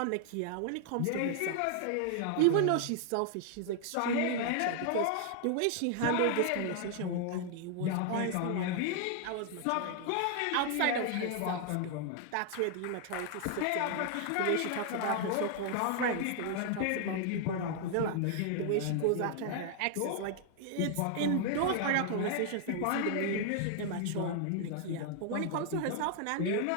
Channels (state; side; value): different; both; correlation 0.00